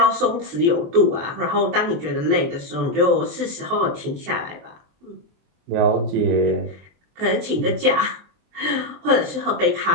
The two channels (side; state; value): left; late; 23 ms